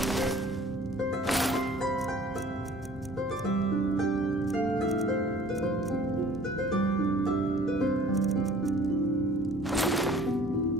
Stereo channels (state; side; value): normal; both; correlation 0.51